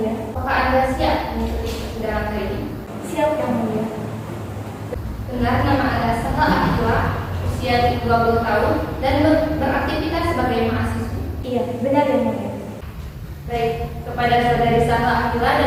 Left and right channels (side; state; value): both; identical; correlation 1.00